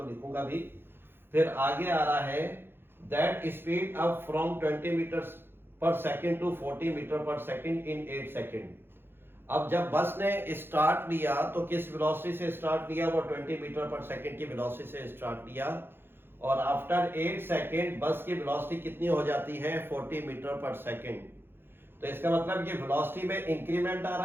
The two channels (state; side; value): late; left; 0.10 ms